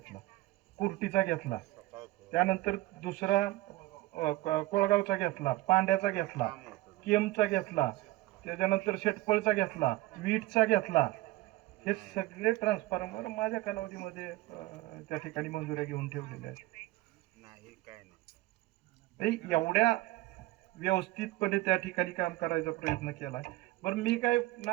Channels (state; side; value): quieter; left; 18.1 dB